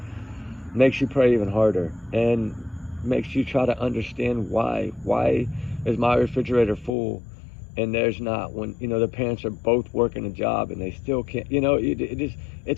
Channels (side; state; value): right; drops out; at 6.9 s